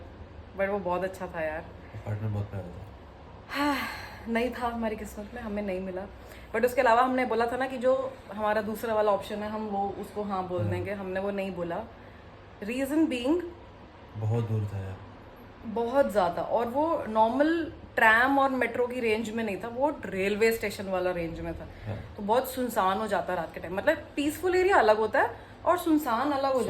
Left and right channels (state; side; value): identical; both; correlation 1.00